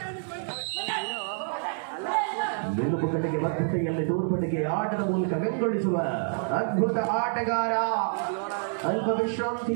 ಮೆಲುಪುಕಟೆಗೆ ಬದ್ಧತೆಯಲ್ಲಿ ತೋರ್ಪಟೆಗೆ ಆಟದ ಮೂಲಕ ಬೆಂಗೊಳಿಸುವ ಅದ್ಭುತ ಆಟಗಾರ. ಅಲ್ಪ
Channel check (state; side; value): silent; left; digital silence